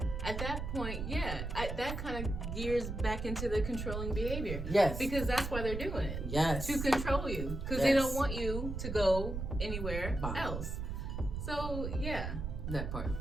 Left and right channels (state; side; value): noise; right; rumble, 4 dB below the sound